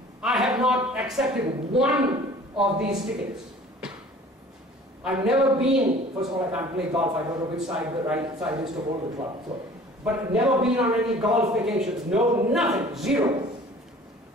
I have not accepted one of these tickets. I've never been, first of all, I can't play golf, I don't know which side the right side is to hold the club. So, but never been on any golf vacations. No, nothing, zero.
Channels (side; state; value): both; normal; correlation 0.48